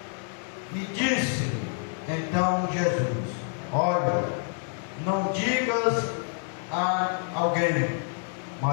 E disse então Jesus: olha, não digas a alguém,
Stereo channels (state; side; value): silent; right; 56 dB below the other